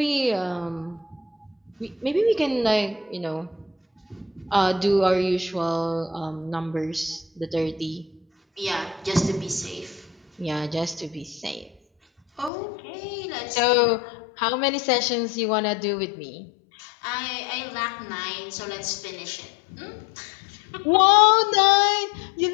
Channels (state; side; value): drops out; right; at 12.5 s